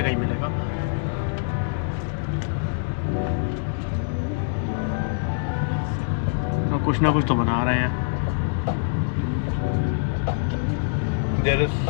ही मिलेगा. तो कुछ ना कुछ तो बना रहे हैं. There is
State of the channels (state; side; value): silent; right; digital silence